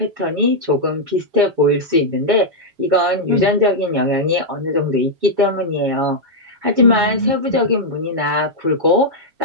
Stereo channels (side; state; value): left; late; 7.1 ms